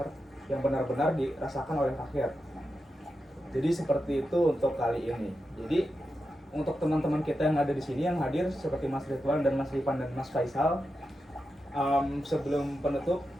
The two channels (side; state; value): both; normal; correlation 0.89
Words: yang benar-benar dirasakan oleh rakyat. Jadi seperti itu untuk kali ini. Jadi untuk teman-teman kita yang ada di sini yang hadir seperti Mas Ridwan dan Mas Ripan dan Mas Faisal, sebelum penutup,